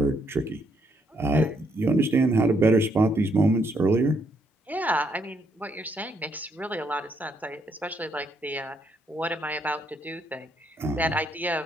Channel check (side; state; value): both; normal; correlation 0.73